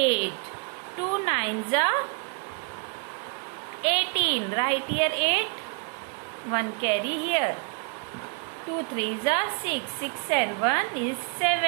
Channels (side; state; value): left; quieter; 31.4 dB